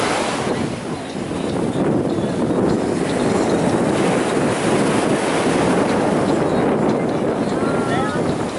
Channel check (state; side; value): identical; both; correlation 1.00